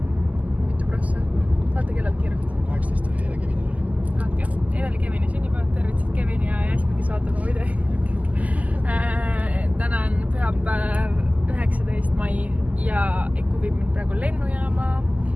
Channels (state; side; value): late; left; 0.075 ms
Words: Mitu prossa? Vaata kellelt kirjut. 18 oli eile Kevinil oli. Okay. Eile oli Kevini sünnipäev, tervitsid Kevini ja Jasmi, kes vaatab mu video. Täna on pühapäev 19. mai ja Eku viib mind praegu lennujaama